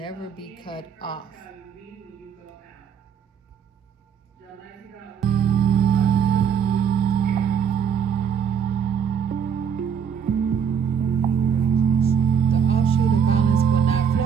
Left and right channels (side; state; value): left; quieter; 7.6 dB